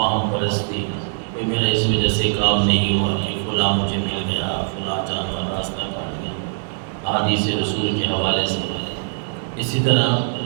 پرستی، کوئی میرا اس وجہ سے کام نہیں ہوا کہ فلاں مجھے مل گیا، فلاں جانور راستہ کاٹ گیا، احادیث رسول کے حوالے سے۔ اسی طرح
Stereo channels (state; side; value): silent; left; digital silence